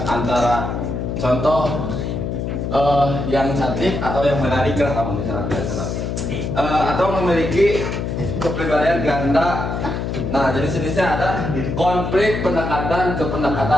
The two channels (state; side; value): noise; left; hum, 3 dB below the sound